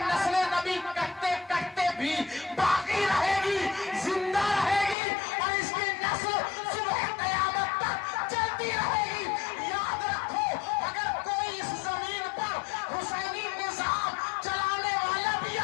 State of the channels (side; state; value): right; drops out; at 5.0 s